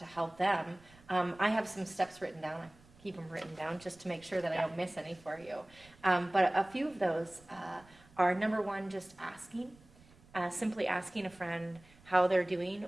help them, I have some steps written down. I keep them written down just to make sure that I don't miss any for you. But a few of those are, number one, just asking. Simply asking a friend how they're doing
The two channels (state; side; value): noise; right; rumble, 26 dB below the sound